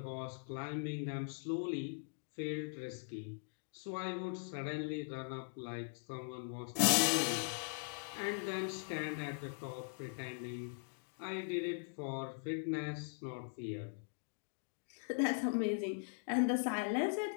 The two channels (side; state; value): right; silent; digital silence